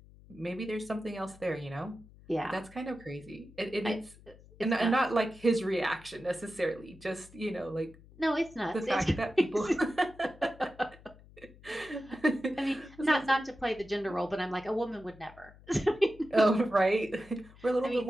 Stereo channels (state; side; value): noise; left; hum, 23 dB below the sound